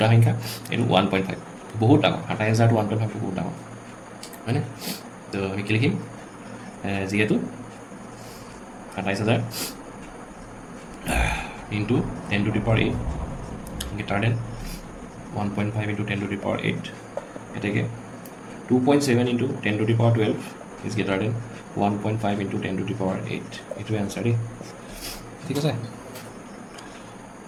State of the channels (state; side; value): identical; both; correlation 1.00